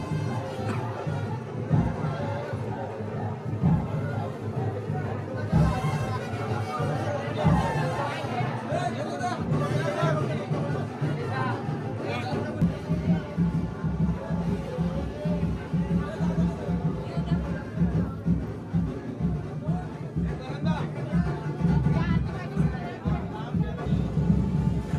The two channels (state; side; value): identical; both; correlation 1.00